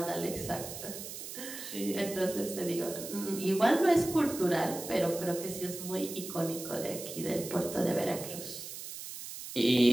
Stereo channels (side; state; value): right; noise; hiss, 10 dB below the sound